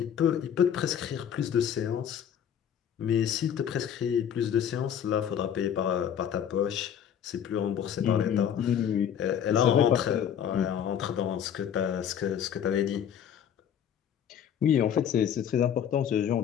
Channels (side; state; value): right; quieter; 9.0 dB